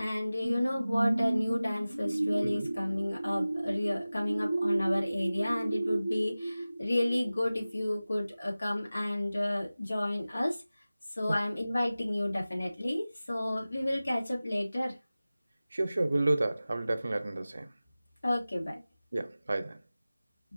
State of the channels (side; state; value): both; inverted; correlation -0.97